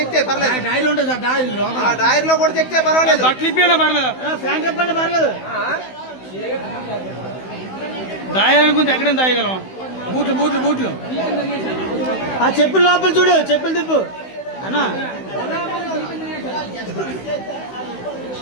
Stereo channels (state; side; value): late; right; 16 ms